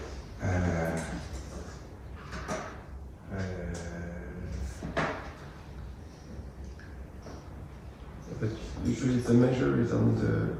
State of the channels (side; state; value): both; identical; correlation 1.00